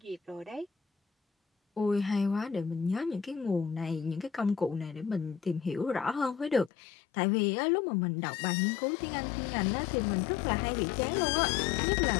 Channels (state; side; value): drops out; right; at 6.7 s